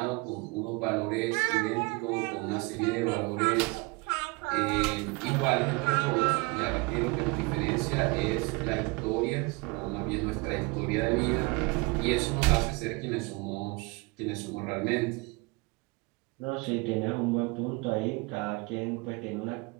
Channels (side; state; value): left; quieter; 26.7 dB